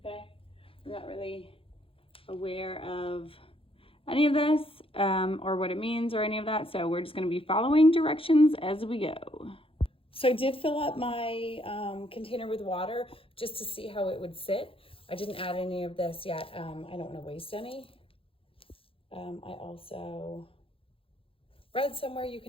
I'm not really aware of any of this or what it means or any of that. So we're just gonna be following directions as we go. So I did fill up my container with water just to see how it would sit. I didn't add any of this yet. I don't want to waste any. I also read somewhere you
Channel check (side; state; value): right; late; 0.27 ms